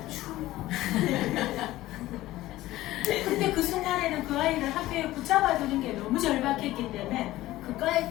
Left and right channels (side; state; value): right; quieter; 16.3 dB